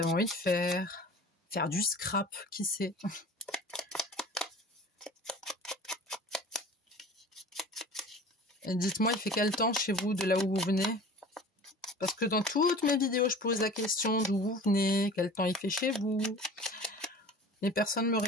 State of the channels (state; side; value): normal; both; correlation 0.41